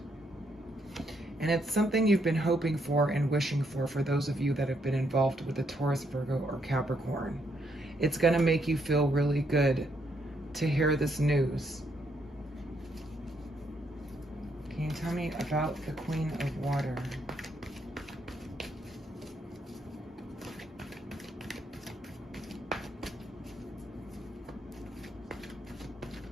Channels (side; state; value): both; normal; correlation 0.74